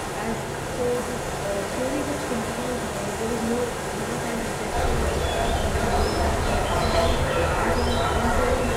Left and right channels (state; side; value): identical; both; correlation 1.00